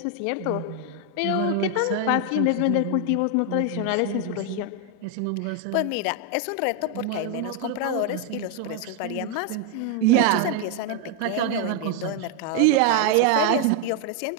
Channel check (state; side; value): different; both; correlation 0.01